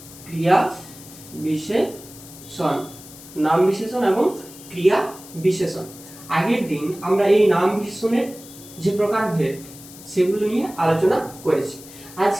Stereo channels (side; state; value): left; noise; hiss, 18 dB below the sound